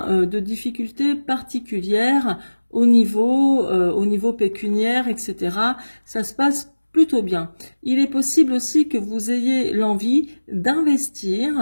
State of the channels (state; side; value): inverted; both; correlation -1.00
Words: de difficulté particulière au niveau pécuniaire, etc. Ça se passe plutôt bien. Il est possible aussi que vous ayez l'envie